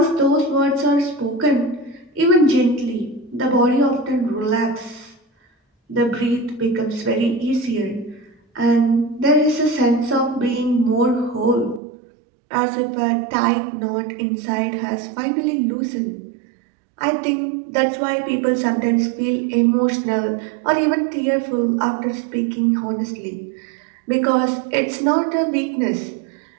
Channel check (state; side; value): drops out; left; at 11.8 s